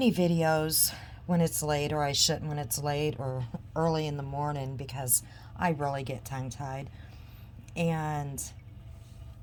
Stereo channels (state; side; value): identical; both; correlation 1.00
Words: videos when it's late, or I shouldn't when it's late or early in the morning, because I really get tongue tied. And